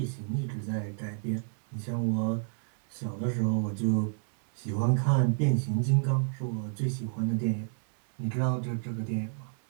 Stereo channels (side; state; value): left; silent; digital silence